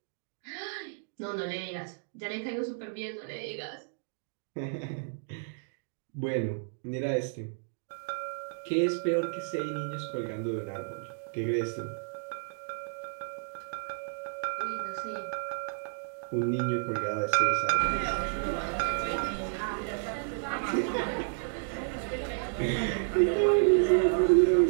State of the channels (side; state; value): left; silent; digital silence